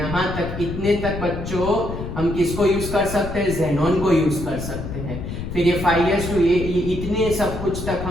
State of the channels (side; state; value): left; noise; rumble, 7 dB below the sound